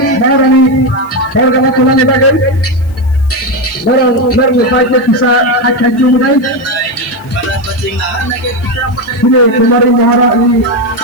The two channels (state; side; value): noise; left; hiss, 29 dB below the sound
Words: Maharani Warga Tulan Bagai Orang Merlukai bisa akan jumpai ini Kumari Maharani